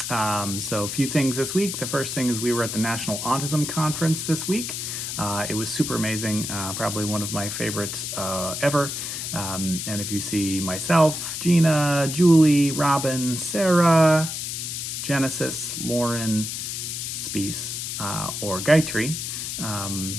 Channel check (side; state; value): left; noise; hiss, 5 dB below the sound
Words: So a few things this week. The first thing is we were at the National Autism Conference this week. It was super amazing, probably one of my favorites ever. And if you see myself, Gina, Julie, Robin, Sarah, Genesis, Lauren, Speece, or Gayatri,